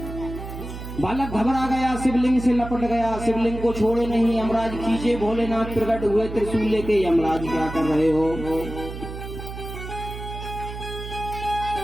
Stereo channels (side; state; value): right; noise; hum, 9 dB below the sound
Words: बालक घबरा गया, शिवलिंग से लपट गया, शिवलिंग को छोड़े नहीं। यमराज खींचे, भोलेनाथ प्रकट हुए त्रिशूल लेके। यमराज क्या कर रहे हो?